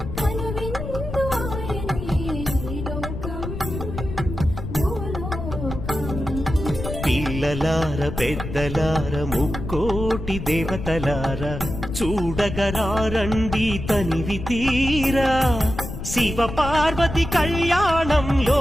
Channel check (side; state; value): left; noise; rumble, 7 dB below the sound